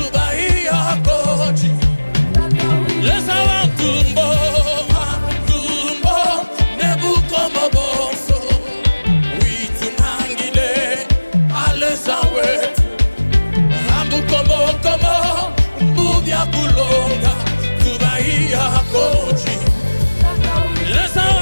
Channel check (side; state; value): both; inverted; correlation -1.00